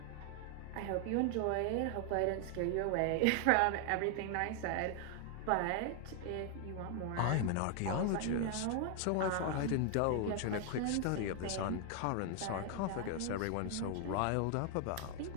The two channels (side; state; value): both; different; correlation 0.00